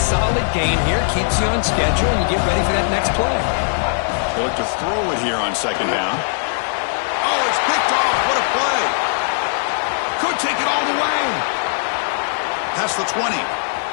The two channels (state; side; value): silent; right; digital silence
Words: gain here. Keeps you on schedule, and you get ready for that next play. They look to throw it here on 2nd down. Oh, it's picked off. What a play. Could take it all the way. Past the 20.